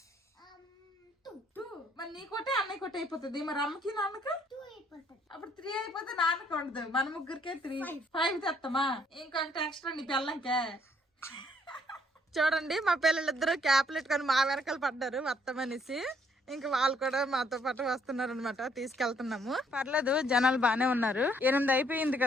2. మరి నీ కొట్టే అన్నయ్య కొట్టే అయిపోతుంది. మరి అమ్మకి నాన్నకి 2 అయిపోతుంది. అప్పుడు 3 అయిపోతే నాన్నకి ఉండదు. మన ముగ్గురికే 3 5 తెస్తామా? ఇంకొకటి ఎక్స్ట్రా నీ పిల్లలకే. చూడండి, మా పిల్లలిద్దరూ క్యాప్లు పెట్టుకొని మా వెనకాల పడ్డారు వస్తామనేసి. ఇంకా వాళ్ళు కూడా మాతో పాటు వస్తున్నారు అనమాట. తీసుకెళ్తున్నాము. పర్లేదు, జనాలు బానే ఉన్నారు. 8 అయిపోయింది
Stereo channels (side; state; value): both; normal; correlation 0.67